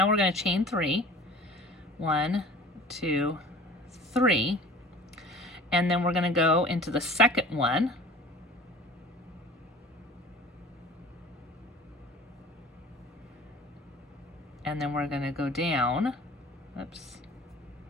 we're going to chain 3. 1, 2, 3. And then we're going to go into the second one. And then we're going to go down. Oops.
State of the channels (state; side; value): normal; both; correlation 0.44